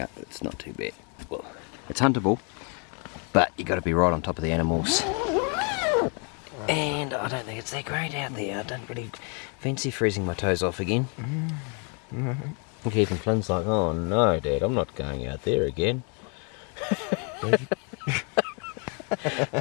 It's not too bad. Well, it's huntable, but you got to be right on top of the animals. And I don't think it's that great out there. I don't really fancy freezing my toes off again. And even Flynn's like, oh no, Dad, I'm not going out there again.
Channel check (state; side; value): quieter; right; 38.2 dB